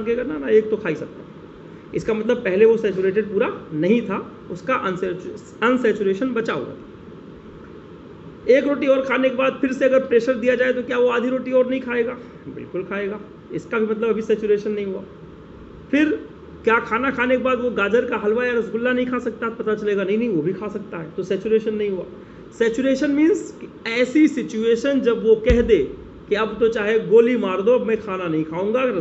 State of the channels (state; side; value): identical; both; correlation 1.00